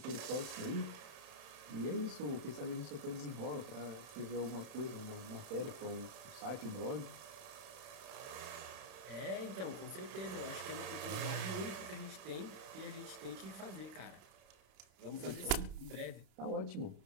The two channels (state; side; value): late; left; 31 ms